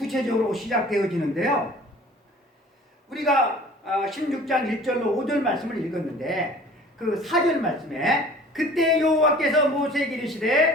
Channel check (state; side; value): normal; both; correlation 0.47